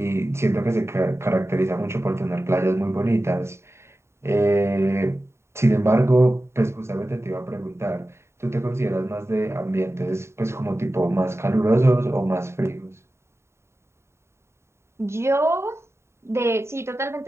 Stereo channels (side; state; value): left; late; 0.13 ms